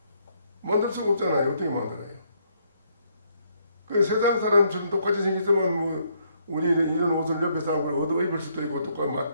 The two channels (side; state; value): both; inverted; correlation -0.71